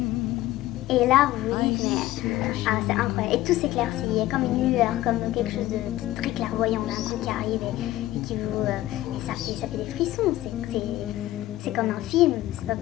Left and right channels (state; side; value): quieter; right; 15.7 dB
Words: Et là, vous vous dites, mais c'est incroyable. Et tout s'éclaircit, il y a comme une lueur, comme quelque chose de très clairvoyant d'un coup qui arrive et qui vous. Et ça fait des frissons, c'est comme un film, c'est pas